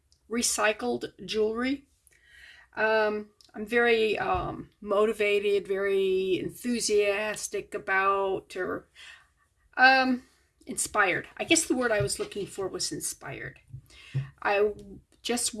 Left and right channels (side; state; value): both; identical; correlation 1.00